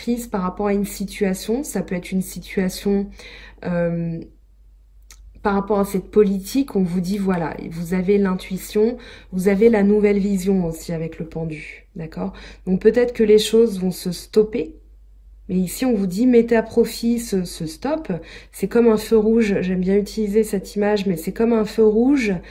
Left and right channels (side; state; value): both; identical; correlation 1.00